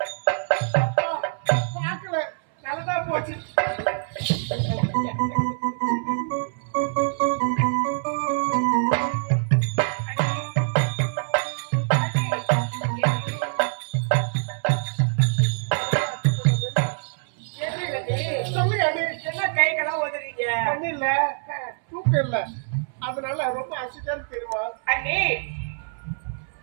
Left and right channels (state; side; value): silent; left; 62 dB below the other